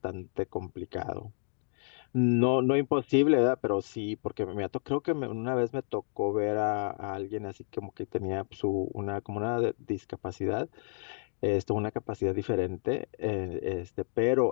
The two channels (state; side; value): silent; right; 57 dB below the other